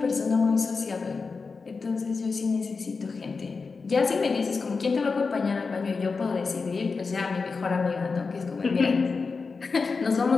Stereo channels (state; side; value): quieter; right; 4.6 dB